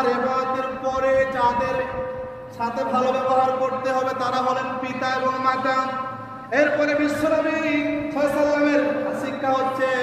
ইবাদতের পরে যাদের সাথে ভালো ব্যবহার করতে হবে তারা হলেন পিতা এবং মাতা। এরপরে বিশ্বনবী সাল্লাল্লাহু আলাইহি ওয়াসাল্লামের শিক্ষা হচ্ছে,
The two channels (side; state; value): both; identical; correlation 1.00